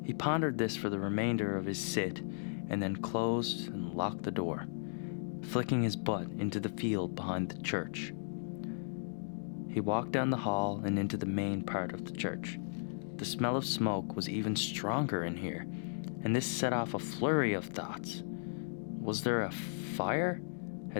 He pondered this for the remainder of his sit and then closed and locked the door, flicking his butt into the field behind the church. He walked down the hall and into the main part of the church. The smell of smoke was even stronger in here, and this set off a flurry of thoughts. Was there a fire?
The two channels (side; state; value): right; silent; digital silence